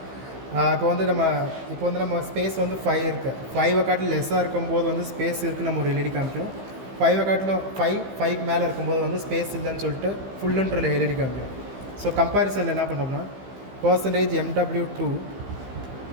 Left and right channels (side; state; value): left; late; 15 ms